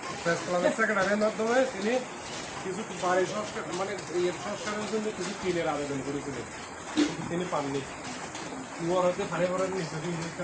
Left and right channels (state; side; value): identical; both; correlation 1.00